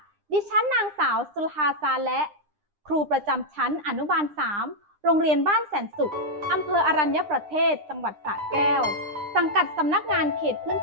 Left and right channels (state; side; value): late; left; 9.9 ms